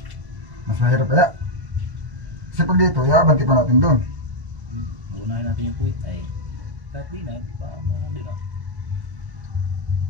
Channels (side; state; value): left; late; 1.0 ms